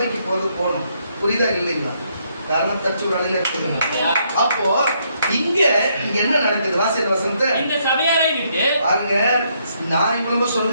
போகணும். புரியுதா இல்லைங்களா? காரணம் தச்சு ஒரு அலையில எடுத்துக்கணும். அப்போ இங்க என்ன நடக்குது? வாசித்த வசனத்தை இந்த சபையாரை விட்டு பாருங்க. நான் இவ்வளவு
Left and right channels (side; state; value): both; inverted; correlation -0.73